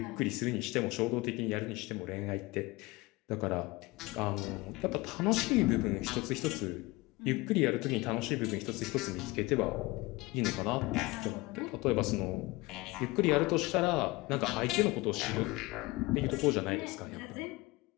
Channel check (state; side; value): quieter; right; 22.3 dB